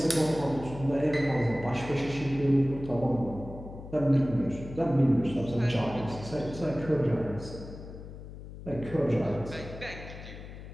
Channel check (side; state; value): left; noise; hum, 13 dB below the sound